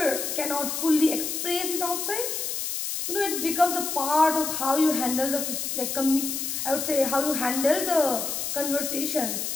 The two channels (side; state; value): left; noise; hiss, 3 dB below the sound